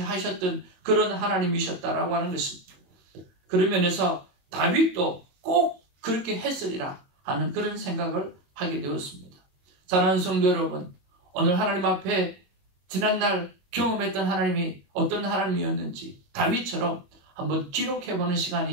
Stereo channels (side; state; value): left; late; 22 ms